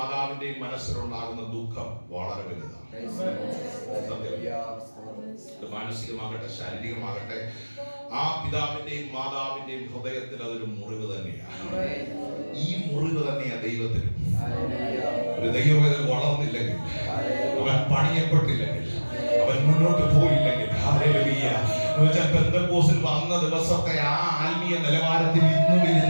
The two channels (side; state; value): both; inverted; correlation -1.00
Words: മനസ്സിലുണ്ടാകുന്ന ദുഃഖം വളരെ വലുതാണ്. മാനസികമാകട്ടെ ശാരീരികമാകട്ടെ ആ പിതാവിന്റെയും മാതാവിന്റെയും ഹൃദയത്തിൽ അതൊരു മുറിവ് തന്നെയാണ്. ഈ മുറിവ് തന്നെയാണ് ദൈവത്തിനും. ഒരു ദൈവവേദന വളർന്നില്ലെങ്കിൽ, അവൻ പണിയപ്പെട്ടില്ലെങ്കിൽ, അവൻ മുന്നോട്ട് പോയില്ലെങ്കിൽ, പെന്തക്കോസ്തിൽ വന്ന ദിവസത്തെ ആ ആത്മീയ നിലവാരത്തിൽ ഇന്നും